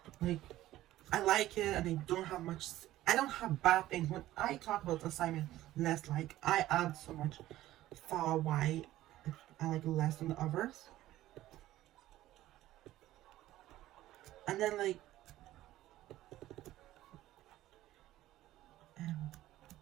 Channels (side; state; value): left; quieter; 14.9 dB